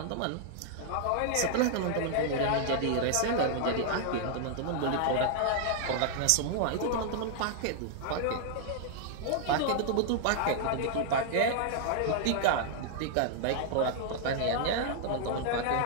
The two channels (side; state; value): both; different; correlation -0.01